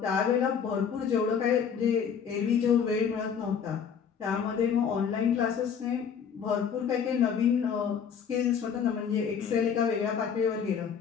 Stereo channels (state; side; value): quieter; right; 7.2 dB